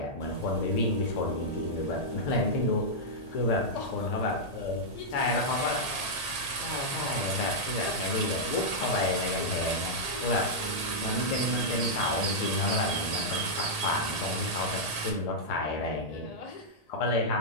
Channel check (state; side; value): late; right; 1.8 ms